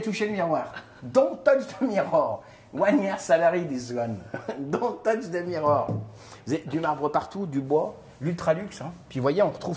toucher le miroir. Don't touch the mirror. 1 year salary, this one. Don't touch the mirror. Vous avez du marbre partout, du bois, l'ultra luxe. Hein. Puis vous voyez, on retrouve,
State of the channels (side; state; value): both; identical; correlation 1.00